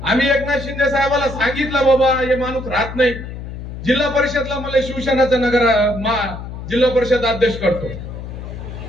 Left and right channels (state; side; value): noise; left; hum, 10 dB below the sound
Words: आम्ही एकनाथ शिंदे साहेबाला सांगितलं बाबा हे माणूस राहत नाही, जिल्हा परिषदला मला शिवसेनाचा जिल्हा परिषद अध्यक्ष करतो,